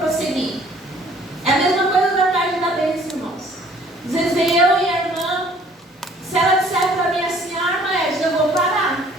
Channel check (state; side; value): normal; both; correlation 0.56